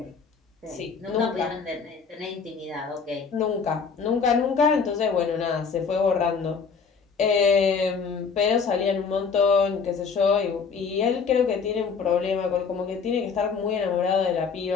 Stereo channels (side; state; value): right; quieter; 5.6 dB